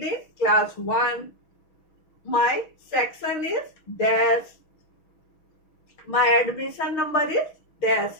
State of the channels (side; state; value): right; late; 6.3 ms